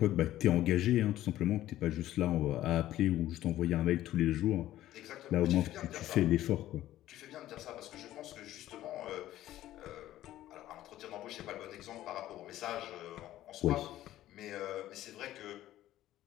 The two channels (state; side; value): quieter; right; 14.0 dB